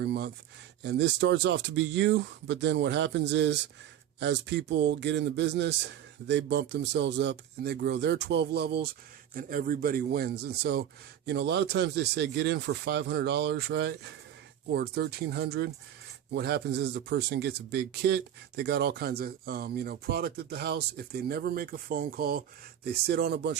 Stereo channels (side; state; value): left; quieter; 10.5 dB